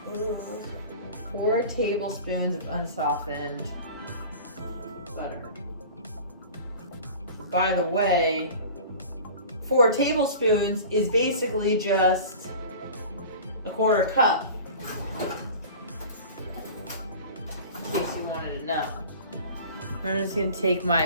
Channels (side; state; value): both; inverted; correlation -0.39